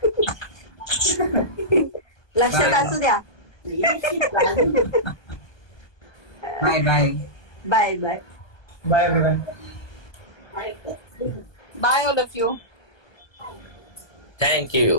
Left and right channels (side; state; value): right; late; 1.2 ms